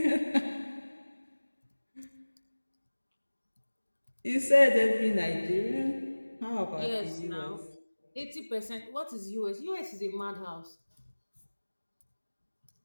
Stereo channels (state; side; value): inverted; both; correlation -1.00